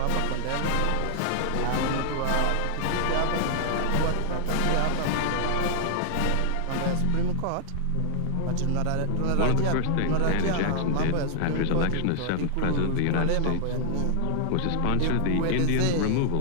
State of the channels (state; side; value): different; both; correlation 0.00